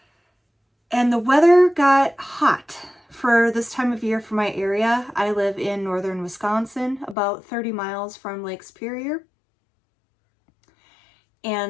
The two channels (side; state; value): right; drops out; at 7.2 s